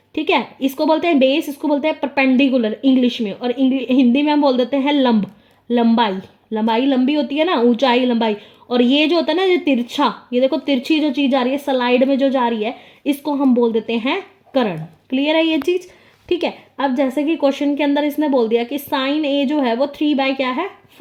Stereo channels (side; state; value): both; identical; correlation 1.00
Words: ठीक है, इसको बोलते हैं बेस, इसको बोलते हैं परपेंडिकुलर इंग्लिश में, और हिंदी में हम बोल देते हैं लंब, लंबाई। लंबाई लंबी होती है ना, ऊंचाई लंबाई। और ये जो होता है ना, ये तिरछा, ये देखो तिरछी जो चीज़ आ रही है स्लाइड में जो जा रही है, इसको हम बोल देते हैं करण। क्लियर है ये चीज़? ठीक है, अब जैसे कि क्वेश्चन के अंदर इसने बोल दिया कि साइन ए जो है वो